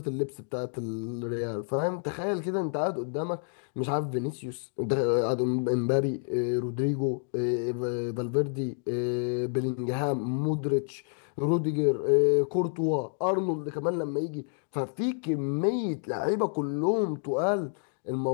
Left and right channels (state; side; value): silent; right; digital silence